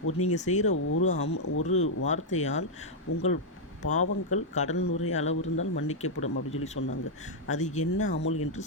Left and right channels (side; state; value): both; normal; correlation -0.03